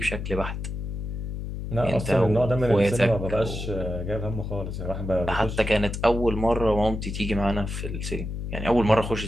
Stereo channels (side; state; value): left; noise; hum, 6 dB below the sound